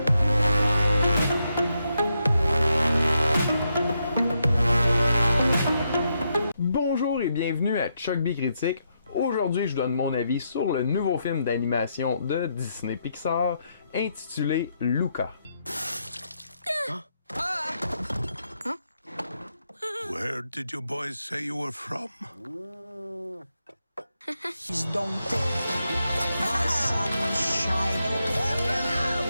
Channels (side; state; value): both; inverted; correlation -0.81